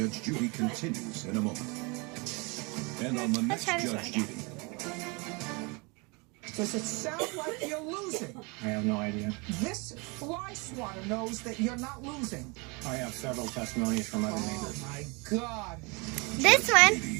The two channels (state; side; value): quieter; left; 29.2 dB